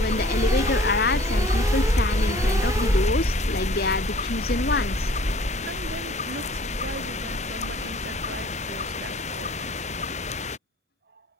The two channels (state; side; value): normal; both; correlation 0.51